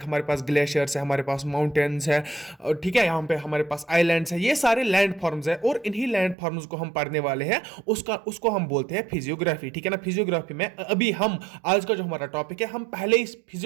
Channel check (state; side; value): drops out; left; at 6.4 s